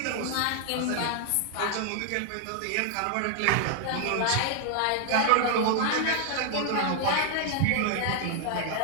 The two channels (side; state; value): both; different; correlation 0.00